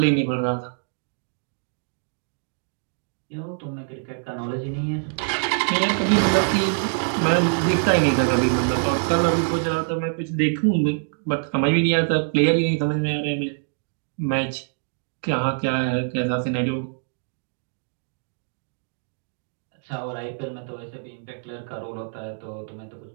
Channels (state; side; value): silent; left; digital silence